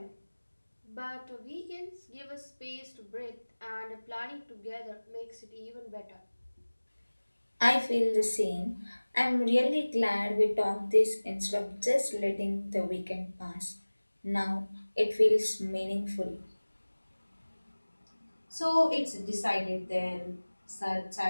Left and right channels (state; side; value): inverted; both; correlation -1.00